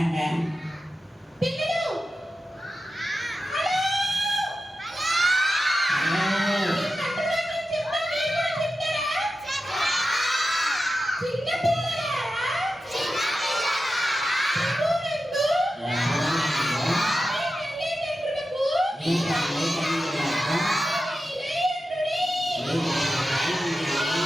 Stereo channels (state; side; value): normal; both; correlation 0.91